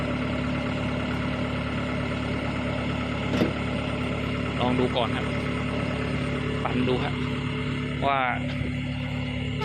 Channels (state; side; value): identical; both; correlation 1.00